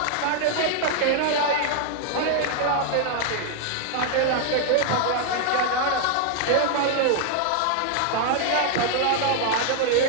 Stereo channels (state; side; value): different; both; correlation 0.00